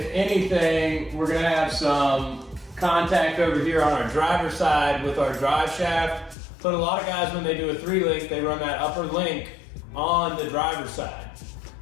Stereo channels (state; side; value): drops out; right; at 6.4 s